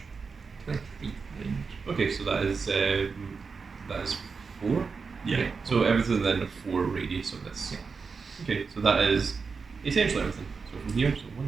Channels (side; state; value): left; quieter; 5.0 dB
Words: 20 feet range. Okay, so that is 4. Yeah. Okay, so everything then a 4 radius of this. Yeah. Okay, so that is essentially everything. So from here, so